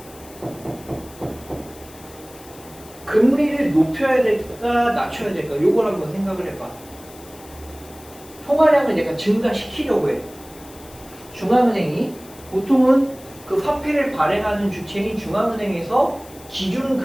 금리를 높여야 될까 낮춰야 될까 요걸 한번 생각을 해봐. 통화량을 내가 증가시키려고 해. 중앙은행이 보통은 그 화폐를 발행하는 주체인 중앙은행에서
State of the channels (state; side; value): noise; left; hiss, 21 dB below the sound